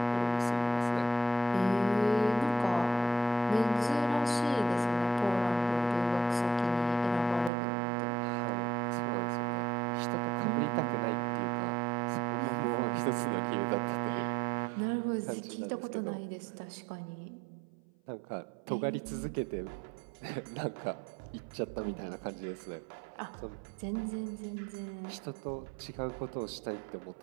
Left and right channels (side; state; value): left; drops out; at 7.5 s